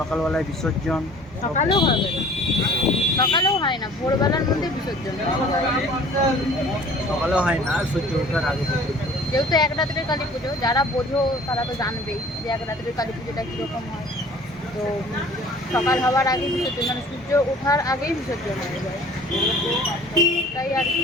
বিসর্জন। সকালেও হবে না, সকালেও হয় না, ভোরবেলার মধ্যে বিসর্জন। সকালেও হয় না, সূর্য ওঠার আগে পর্যন্ত। যেহেতু এক রাত্রের কালী পুজো, যারা বোঝো তারা তো জানবেই যে এক রাত্রের কালী পুজোটা কীরকম হয়। তো সকাল হওয়ার আগেই বিসর্জন, মানে সূর্য ওঠার আগেই বিসর্জন হয়ে যায়, তাই আর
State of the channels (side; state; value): both; normal; correlation 0.49